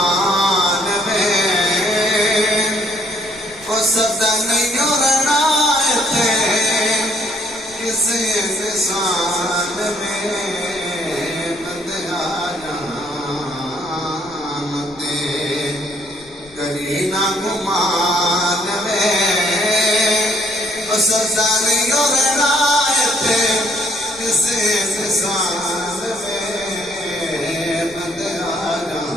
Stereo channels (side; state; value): left; noise; rumble, 25 dB below the sound